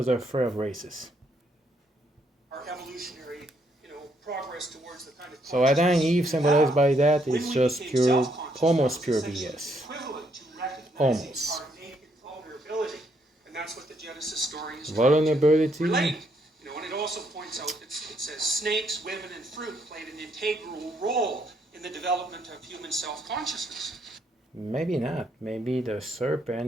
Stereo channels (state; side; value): normal; both; correlation 0.72